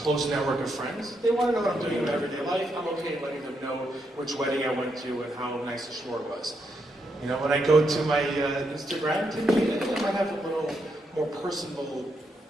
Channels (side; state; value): both; normal; correlation 0.80